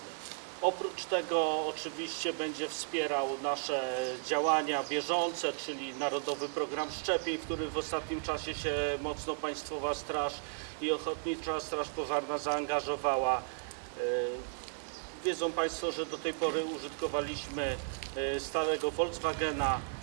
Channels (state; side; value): silent; left; digital silence